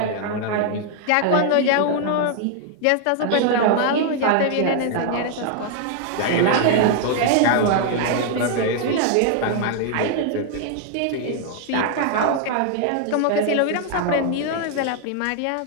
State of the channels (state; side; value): different; both; correlation 0.00